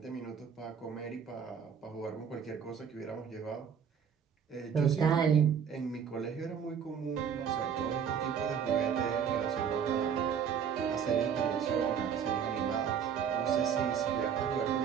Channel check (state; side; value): quieter; left; 7.6 dB